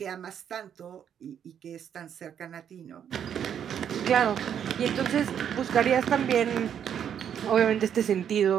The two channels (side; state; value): left; quieter; 8.8 dB